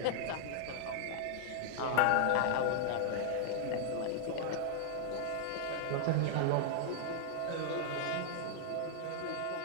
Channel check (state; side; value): different; both; correlation -0.01